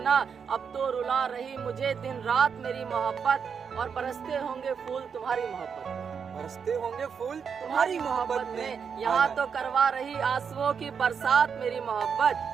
अब तो रुला रही मुझे दिन रात मेरी मोहब्बत, और बरसते होंगे फूल तुम्हारी मोहब्बत, बरसते होंगे फूल तुम्हारी मोहब्बत में। यहाँ तो करवा रही आंसुओं की बरसात मेरी मोहब्बत,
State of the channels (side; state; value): left; quieter; 6.5 dB